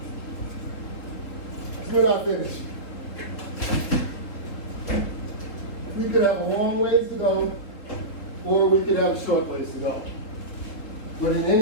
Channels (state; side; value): late; right; 3.7 ms